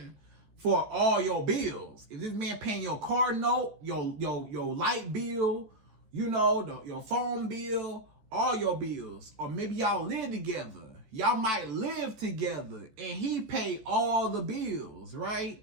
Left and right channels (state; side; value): late; left; 14 ms